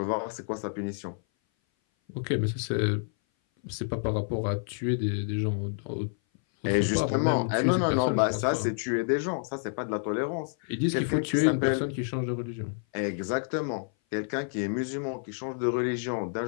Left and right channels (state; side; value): silent; right; 57 dB below the other